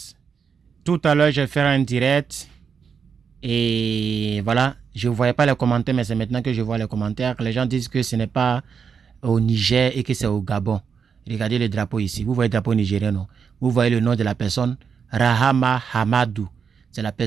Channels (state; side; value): quieter; left; 6.4 dB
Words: tout à l'heure, j'ai fait un direct et voilà, je ne voyais pas les commentaires, mais c'est maintenant que je vois les commentaires. Les gens disent que ce n'est pas au Niger et que c'est au Gabon. Regardez le drapeau ici. Vous voyez le drapeau nigérien, non? Vous voyez le nom de la personne, Rahama Hamadou. C'est la